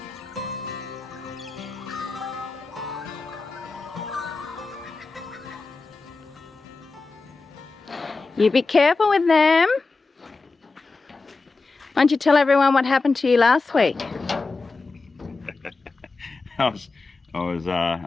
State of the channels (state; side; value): quieter; right; 3.9 dB